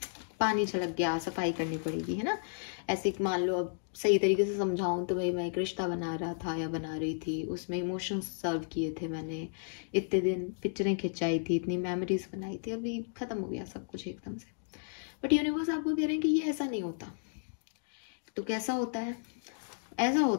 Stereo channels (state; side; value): silent; right; digital silence